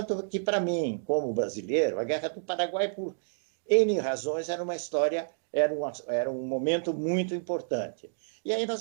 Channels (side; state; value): left; silent; digital silence